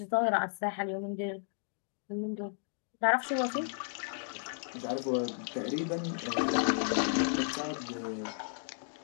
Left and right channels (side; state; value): right; silent; digital silence